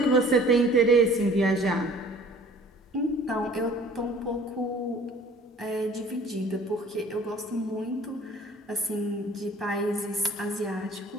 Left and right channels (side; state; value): both; normal; correlation 0.51